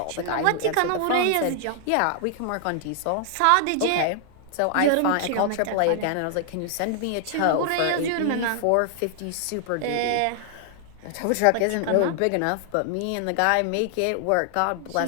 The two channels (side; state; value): both; different; correlation 0.00